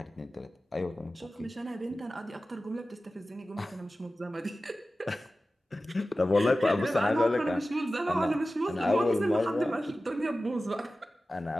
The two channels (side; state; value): both; normal; correlation 0.95